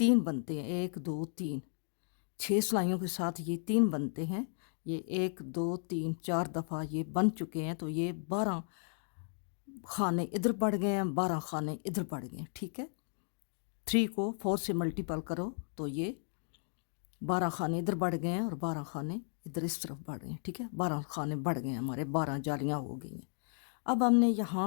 बनते हैं, 1 2 3, 6 सिलाइयों के साथ ये 3 बनते हैं। ये 1 2 3 4 दफ़ा ये बन चुके हैं, तो ये 12 खाने इधर बढ़ गए हैं, 12 खाने इधर बढ़ गए, ठीक है। 3 को 4 से मल्टीपल करो तो ये 12 खाने इधर बढ़ गए हैं और 12 खाने इधर इस तरफ बढ़ गए, ठीक है। 12 खाने बढ़ गए हमारे, 12 जालियाँ हो गई हैं। अब हमने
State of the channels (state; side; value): silent; right; 55 dB below the other